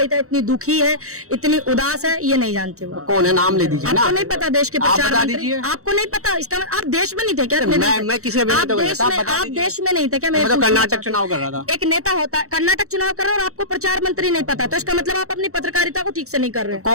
है, इतनी दुखी है, इतनी उदास है, ये नहीं जानते वो कौन है, नाम ले दीजिए ना। आपको नहीं पता देश के प्रचार मंत्री? आपको नहीं पता? इसका आप देश में नहीं थे क्या? मैं किसी आप देश में नहीं थे क्या? मैं तो कर्नाटक चुनाव कर रहा था। एक नेता होता है, कर्नाटक चुनाव कर रहा है और आपको प्रचार मंत्री नहीं पता, तो इसका मतलब आप अपनी पत्रकारिता को ठीक से नहीं कर रहे।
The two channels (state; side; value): late; left; 0.64 ms